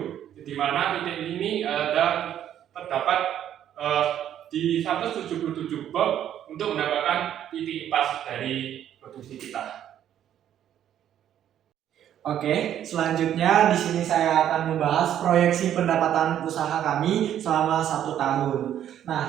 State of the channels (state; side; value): quieter; left; 10.6 dB